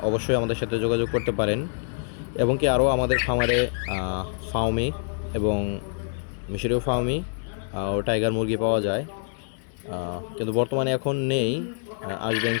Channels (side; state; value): right; silent; 61 dB below the other